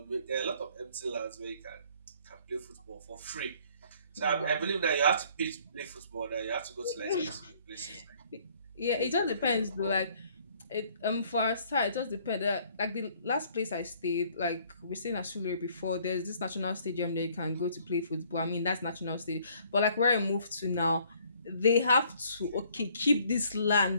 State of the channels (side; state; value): both; inverted; correlation -0.60